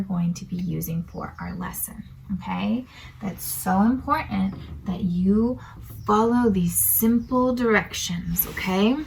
going to be using for our lesson, okay? That's so important that you follow these simple directions, okay?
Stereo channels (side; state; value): both; identical; correlation 1.00